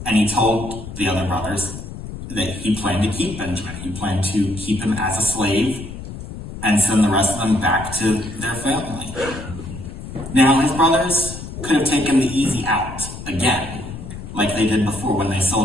and he told the other brothers that he planned to keep Benjamin. He planned to keep him as a slave and send the rest of them back to their family. Now, his brothers could have taken the easy out again, like they did before when they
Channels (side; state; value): left; noise; rumble, 10 dB below the sound